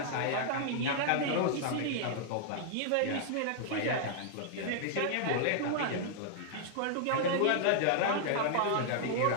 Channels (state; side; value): different; both; correlation -0.01